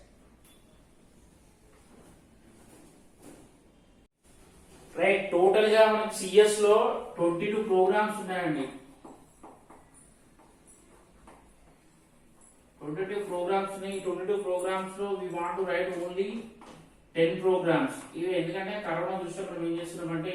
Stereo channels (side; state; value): both; identical; correlation 1.00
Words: రైట్, టోటల్ గా మనకు సిఎస్ లో 22 ప్రోగ్రామ్స్ ఉన్నాయండి. 22 ప్రోగ్రామ్స్ ఉన్నాయి. 22 ప్రోగ్రామ్స్ లో we want to write only 10 programs. ఇవి ఎందుకంటే కరోనా దృష్ట్యా మనం ఏం చేస్తున్నామంటే